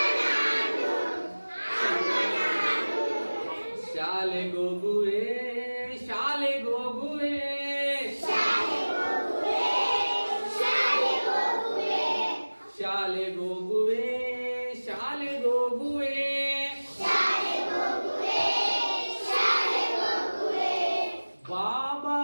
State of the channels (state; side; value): inverted; both; correlation -1.00